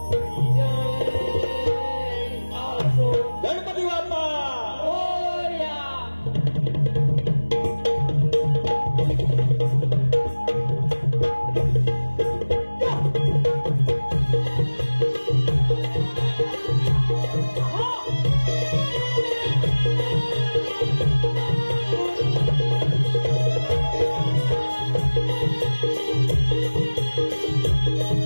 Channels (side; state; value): both; inverted; correlation -1.00